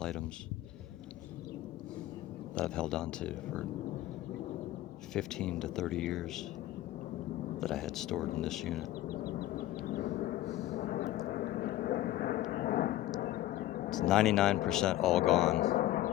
items that I've held on to for 15 to 30 years that I had stored in this unit. It's 99% all gone.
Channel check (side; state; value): right; quieter; 14.8 dB